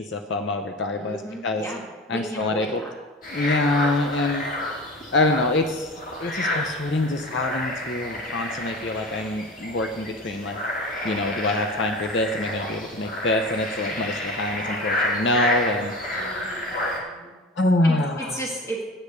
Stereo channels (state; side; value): normal; both; correlation 0.33